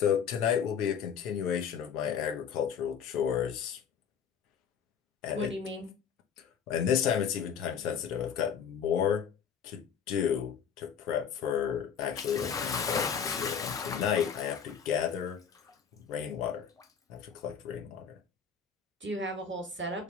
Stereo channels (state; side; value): quieter; right; 7.3 dB